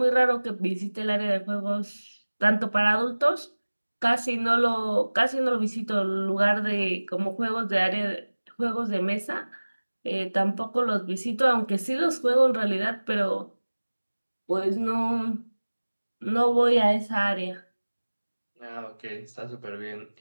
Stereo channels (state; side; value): inverted; both; correlation -1.00